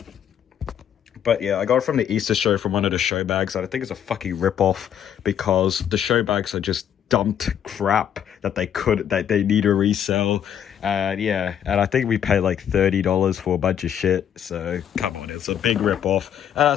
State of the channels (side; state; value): right; quieter; 9.3 dB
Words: But yeah, I got it from the Easter show from one of the show bags, and I think it's a fucking rip-off because the show bags are just dumped crap that they need to resell. And yeah, and I think we paid like $30 for a bunch of shit, so come on, it's a big rip-off. And